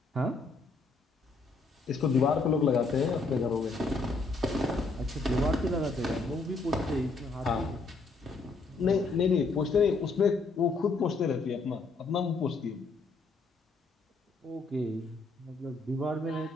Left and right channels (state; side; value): quieter; right; 3.8 dB